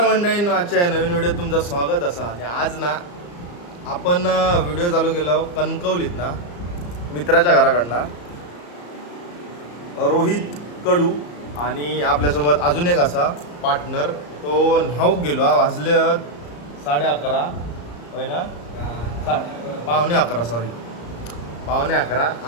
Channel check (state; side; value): late; right; 34 ms